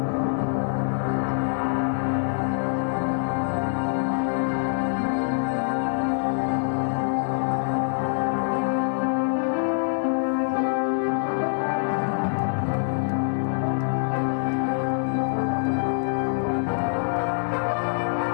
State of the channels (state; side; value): silent; right; 58 dB below the other